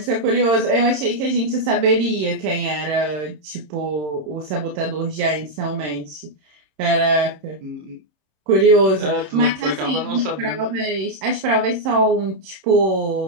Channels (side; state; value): left; late; 26 ms